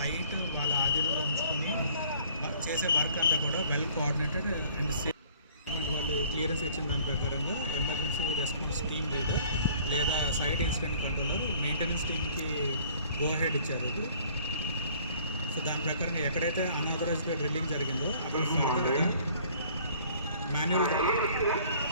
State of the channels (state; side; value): inverted; both; correlation -0.55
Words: వాళ్ళ ఆధీనంలో ఉంచుకొని చేసే వర్క్ అంతా కూడా వెల్ కోఆర్డినేటెడ్ అండ్ సేఫ్. వాళ్ళు క్లియరెన్స్ ఇచ్చిన దాని ప్రకారంగా ఎమర్జెన్సీ రెస్పాన్స్ టీమ్ లీడర్ లేదా సైట్ ఇన్సిడెంట్ కంట్రోలర్ మెయింటెనెన్స్ టీమ్కి గో హెడ్ ఇచ్చారు. సో దాని ప్రకారంగా ఎక్కడైతే అన్ఆథరైజ్డ్గా డ్రిల్లింగ్ జరిగిందో అక్కడ మాన్యువల్